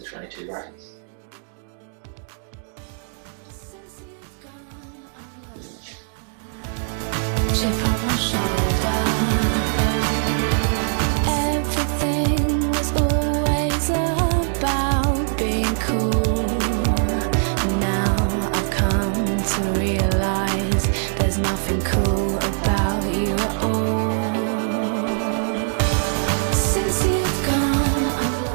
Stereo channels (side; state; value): left; silent; digital silence